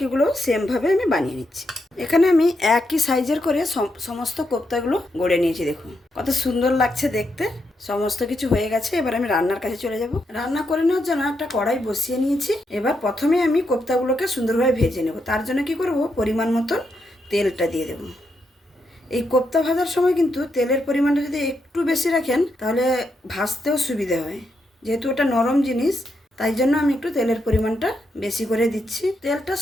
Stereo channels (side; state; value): both; normal; correlation 0.82